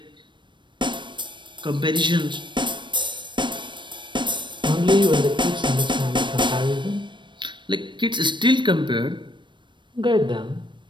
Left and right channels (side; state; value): left; late; 0.23 ms